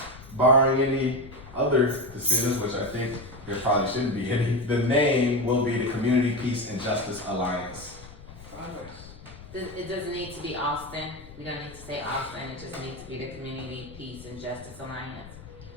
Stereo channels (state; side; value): noise; left; rumble, 17 dB below the sound